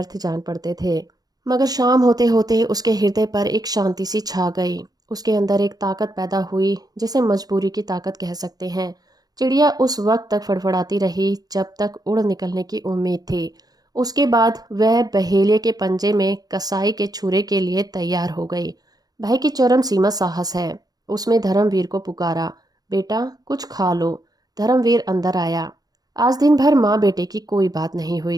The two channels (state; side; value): late; left; 0.19 ms